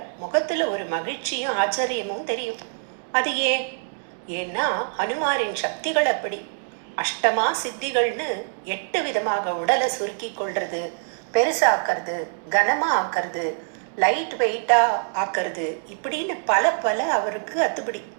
முகத்துல ஒரு மகிழ்ச்சியும் ஆச்சரியமும் தெரியும். அது ஏன்னா ஹனுமாரின் சக்திகள் அப்படி. அஷ்டமா சித்திகள்னு 8 விதமாக உடலை சுருக்கி கொள்றது, பெருசாக்கிறது, கனமா ஆக்கிறது, லைட் வெயிட்டா ஆக்கிறது, இப்படின்னு பல அவருக்கு அத்துப்படி.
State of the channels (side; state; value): left; silent; digital silence